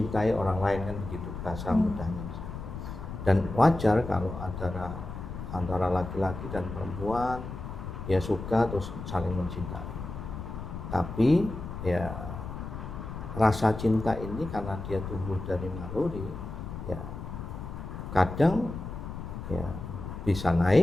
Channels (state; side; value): noise; left; rumble, 8 dB below the sound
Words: orang lain, kan begitu bahasa mudahnya. Dan wajar kalau antara laki-laki dan perempuan ya suka terus saling mencintai. Tapi ya rasa cinta ini karena dia tumbuh dari naluri, ya kadang ya bisa